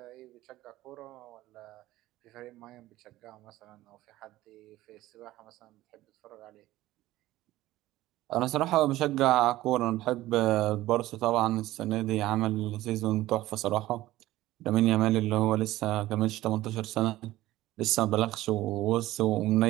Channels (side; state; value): left; quieter; 16.2 dB